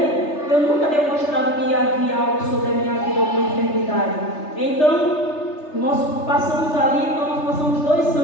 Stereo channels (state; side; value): late; right; 3.3 ms